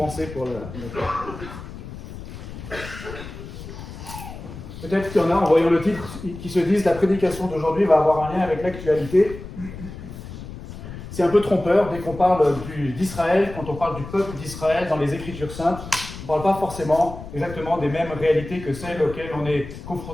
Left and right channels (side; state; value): left; noise; rumble, 12 dB below the sound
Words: pour le. Peut-être qu'il y en a, en voyant le titre, qui se disent la prédication d'aujourd'hui va avoir un lien avec l'actualité. C'est un peu trompeur dès qu'on parle d'Israël, quand on parle du peuple d'Israël dans les Écritures saintes. On ne parle pas forcément exactement des mêmes réalités que celles auxquelles on est